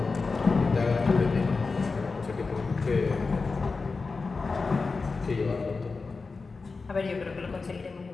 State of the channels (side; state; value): right; quieter; 4.2 dB